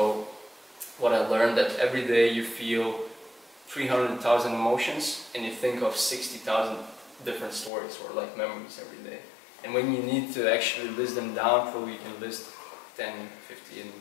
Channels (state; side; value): drops out; right; at 7.7 s